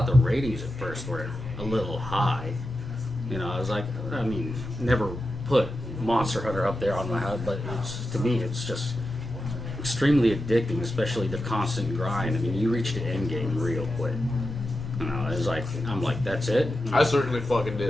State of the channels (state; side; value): normal; both; correlation 0.90